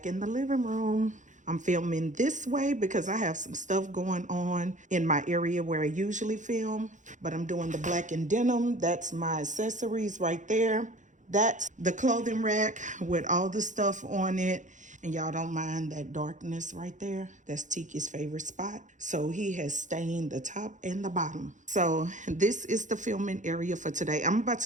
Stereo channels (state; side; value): late; left; 0.36 ms